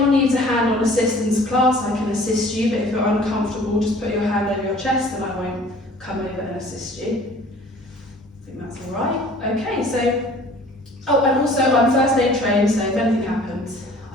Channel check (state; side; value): normal; both; correlation 0.50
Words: needs a hand-on assistance class, I can assist you, but if you're uncomfortable, just put your hand over your chest and I won't come over and assist you. I think that's all right. Okay, so, oh, and also I'm first aid trained, so if anything happens,